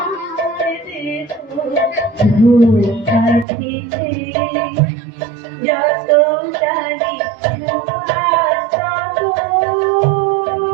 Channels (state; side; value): drops out; left; at 3.5 s